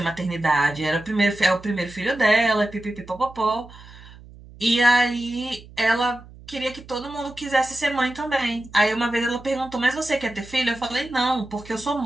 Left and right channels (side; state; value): right; noise; hum, 20 dB below the sound